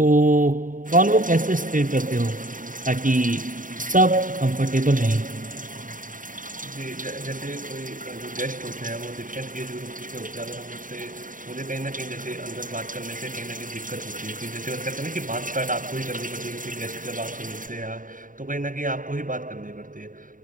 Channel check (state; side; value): late; left; 0.39 ms